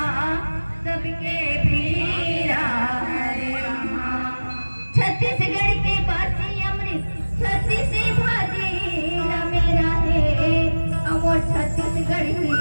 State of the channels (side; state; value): both; inverted; correlation -1.00